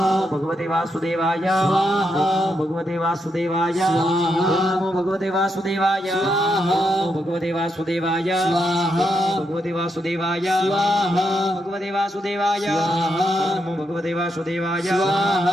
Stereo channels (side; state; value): both; normal; correlation 0.81